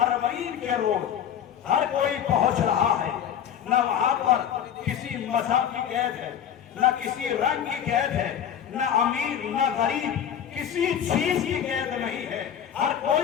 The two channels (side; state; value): right; quieter; 9.2 dB